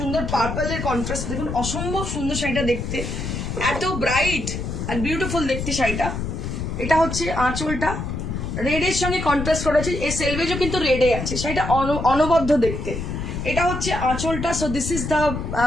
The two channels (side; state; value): left; noise; rumble, 4 dB below the sound